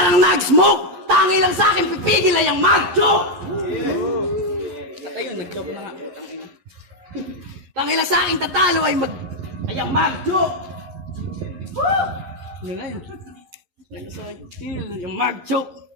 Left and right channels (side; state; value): left; late; 11 ms